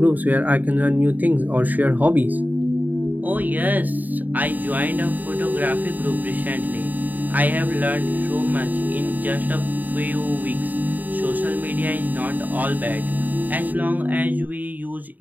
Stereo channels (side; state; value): left; late; 0.084 ms